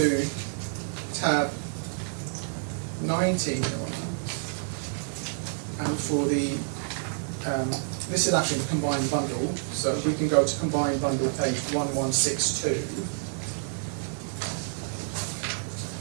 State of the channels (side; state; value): left; silent; digital silence